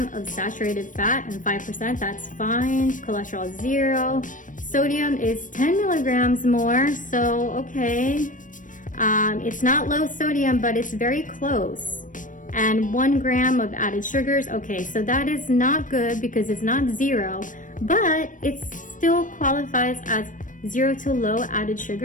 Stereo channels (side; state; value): right; late; 0.38 ms